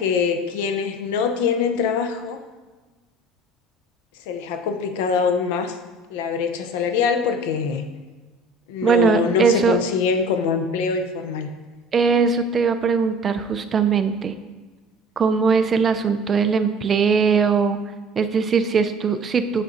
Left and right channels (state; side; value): normal; both; correlation 0.45